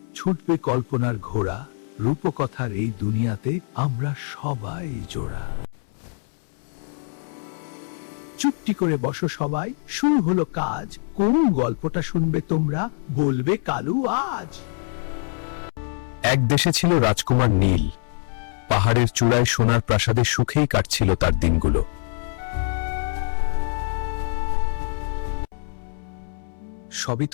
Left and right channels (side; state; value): right; silent; 62 dB below the other